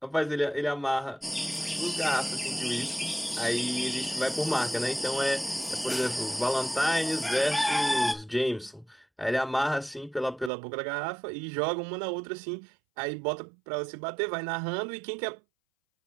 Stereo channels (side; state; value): left; drops out; at 10.5 s